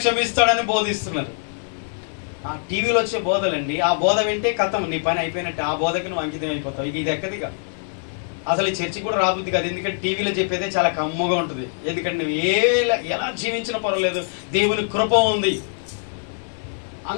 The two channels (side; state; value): right; silent; digital silence